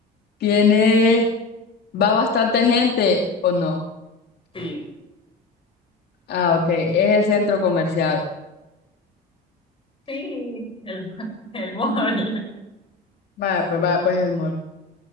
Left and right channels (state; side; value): quieter; right; 3.9 dB